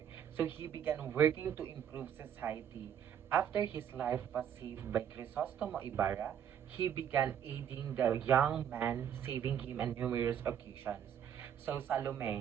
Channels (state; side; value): quieter; left; 9.1 dB